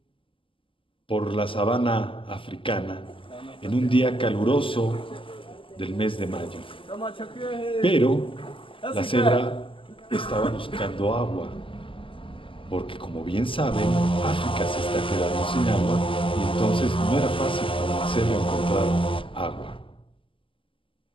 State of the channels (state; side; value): late; right; 0.25 ms